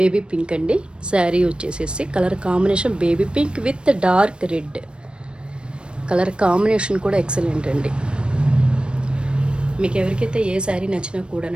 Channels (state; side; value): late; left; 0.055 ms